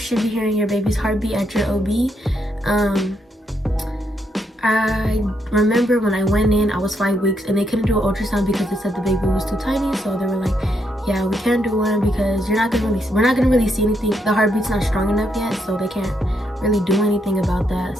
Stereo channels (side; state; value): both; normal; correlation 0.77